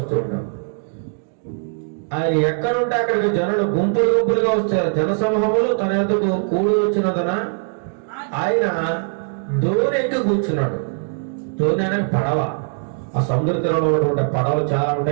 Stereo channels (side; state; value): left; silent; digital silence